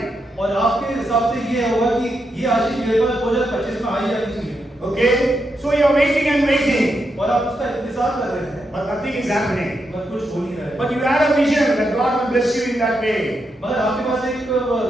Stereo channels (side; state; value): both; normal; correlation 0.84